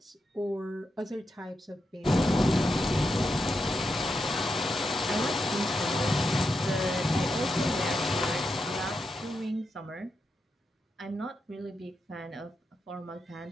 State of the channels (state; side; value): normal; both; correlation 0.86